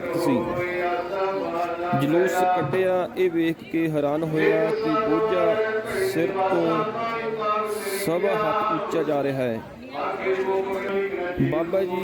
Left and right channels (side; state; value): both; identical; correlation 1.00